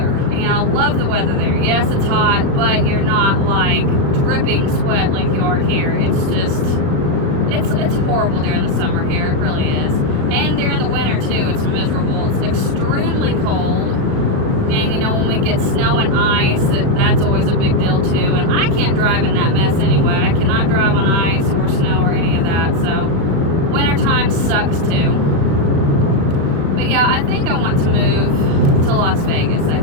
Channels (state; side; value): late; left; 36 ms